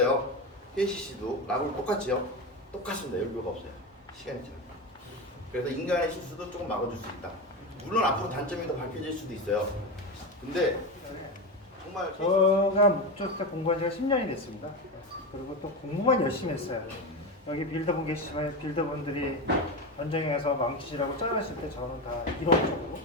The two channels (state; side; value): normal; both; correlation 0.19